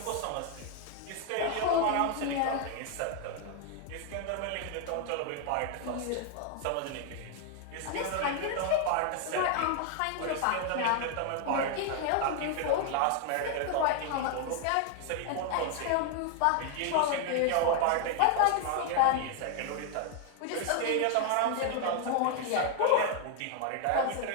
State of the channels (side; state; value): both; different; correlation 0.00